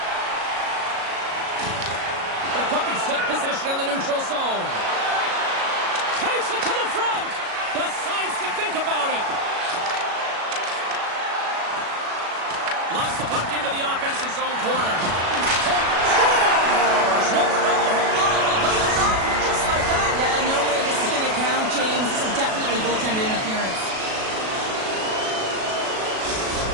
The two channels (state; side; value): late; left; 37 ms